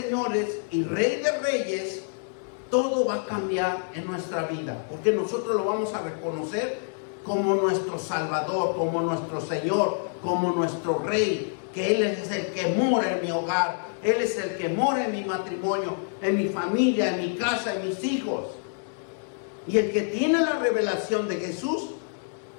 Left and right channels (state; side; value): silent; right; 60 dB below the other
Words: y Rey de reyes, todo va a cambiar en nuestra vida, porque nosotros lo vamos a reconocer como nuestro Salvador, como nuestro Señor, como nuestro Rey, que Él es el que mora en mi hogar, Él es el que mora en mi matrimonio, en mi familia, en mi casa, en mis hijos. Y el que tiene la revelación de Jesús,